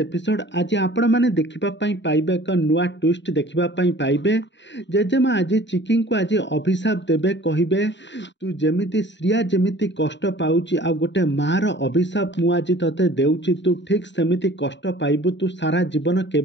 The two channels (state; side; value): late; right; 0.52 ms